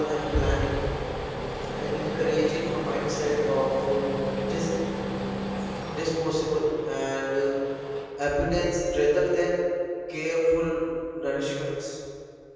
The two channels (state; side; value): identical; both; correlation 1.00